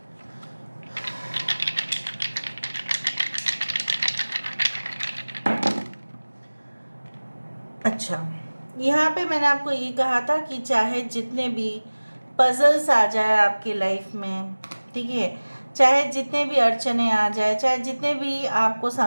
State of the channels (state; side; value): inverted; both; correlation -1.00